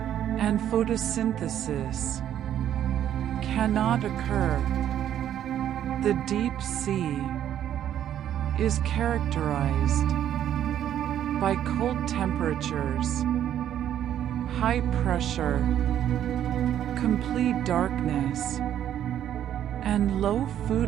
and photosynthesis cannot occur. The deep sea is characterized by cold temperatures, high pressure, complete darkness, and low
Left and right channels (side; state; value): left; quieter; 10.7 dB